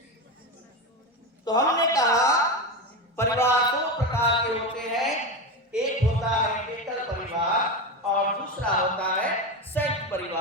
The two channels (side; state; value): both; normal; correlation 0.18